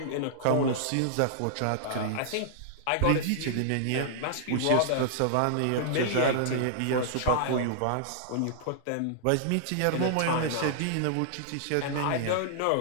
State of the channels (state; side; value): different; both; correlation -0.01